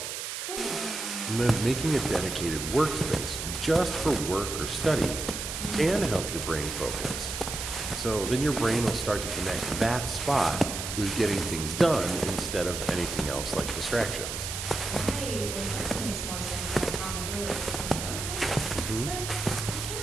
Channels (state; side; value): noise; right; hiss, 5 dB below the sound